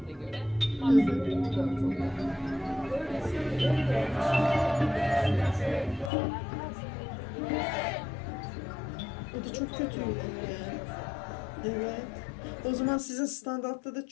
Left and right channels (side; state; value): right; drops out; at 6.1 s